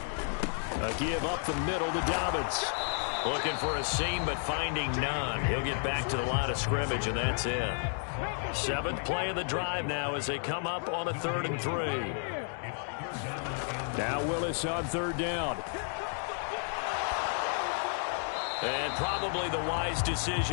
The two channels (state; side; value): silent; right; 56 dB below the other